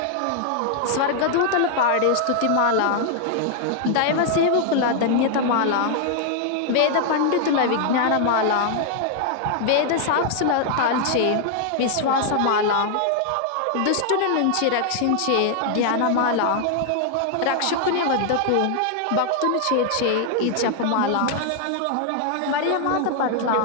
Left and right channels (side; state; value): both; different; correlation 0.00